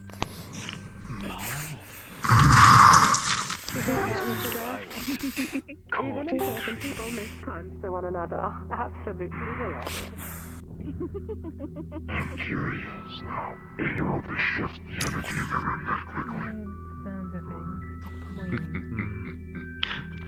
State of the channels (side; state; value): both; identical; correlation 1.00